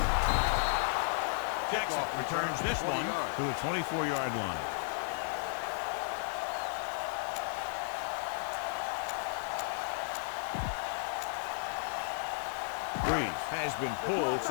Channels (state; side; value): silent; right; digital silence